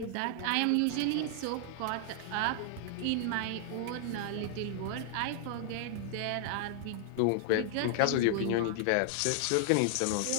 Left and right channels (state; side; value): different; both; correlation 0.00